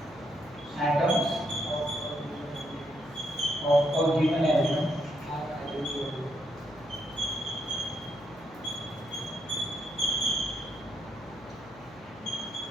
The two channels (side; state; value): left; noise; hum, 21 dB below the sound